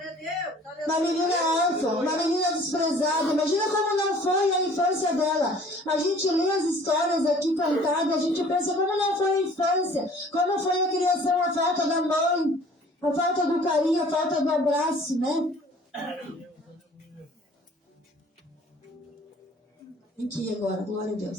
Uma menina órfã, uma menina desprezada. Imagina como não foi a infância dela. A gente lê as histórias aqui contadas, a gente pensa como não foi a infância, como foi a criação, a falta da mãe, a falta do carinho, a falta do abraço, né? Aqui agora, glória a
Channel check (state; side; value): normal; both; correlation 0.52